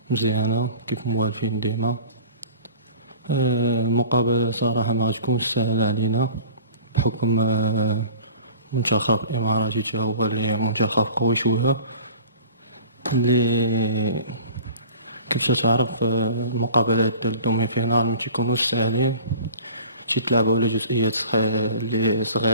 مزيانة كيف موالفين ديما. المقابلة صراحة ما غتكونش سهلة علينا بحكم منتخب الإماراتي تا هو اللي منتخب قوي شوية، اللي كيف تعرف المقابلات ديال الدومي فينال ما تيكونوش ساهلين، تيتلعبوا على جزئيات اللي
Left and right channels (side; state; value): both; inverted; correlation -0.43